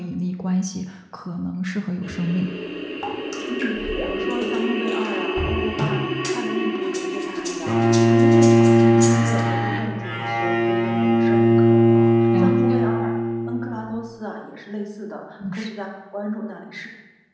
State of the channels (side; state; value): both; identical; correlation 1.00